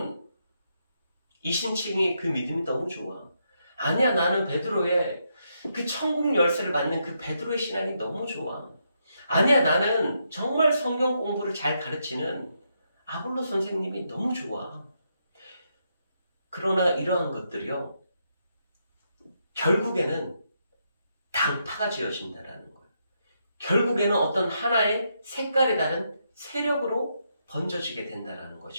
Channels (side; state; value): both; inverted; correlation -0.80